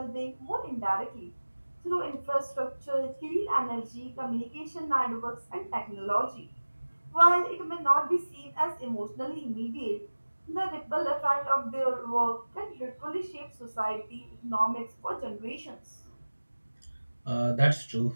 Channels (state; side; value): inverted; both; correlation -1.00